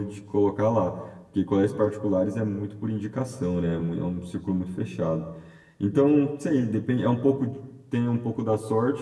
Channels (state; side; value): identical; both; correlation 1.00